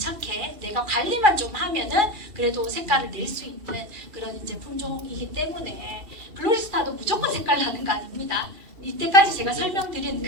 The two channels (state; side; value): late; left; 2.3 ms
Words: 내가 관리만 좀 하면은 그래도 색깔을 낼 수 있는 그런 이제 품종이기 때문에 글로리스탄도 무조건 색깔 나는 거 아닙니다. 이때까지 제가 설명드린